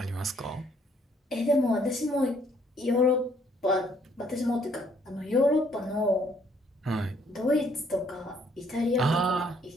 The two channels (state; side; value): normal; both; correlation 0.66